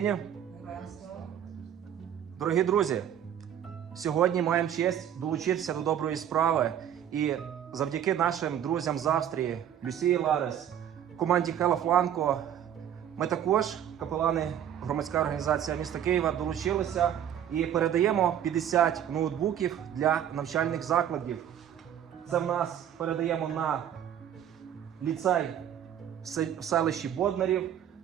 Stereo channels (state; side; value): quieter; left; 9.9 dB